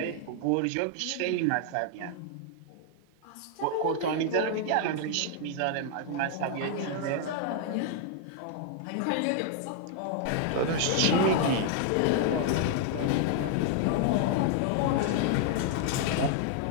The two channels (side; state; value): both; different; correlation 0.00